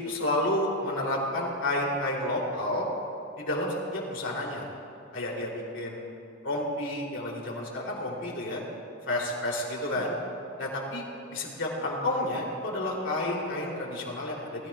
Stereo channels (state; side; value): normal; both; correlation -0.01